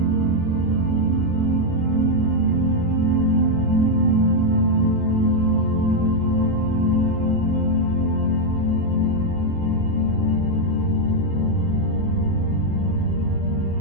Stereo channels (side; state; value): both; normal; correlation 0.01